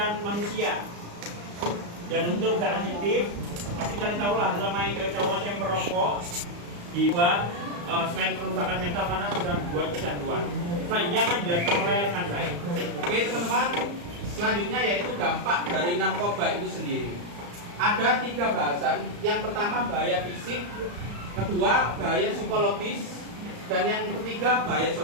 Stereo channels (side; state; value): left; late; 34 ms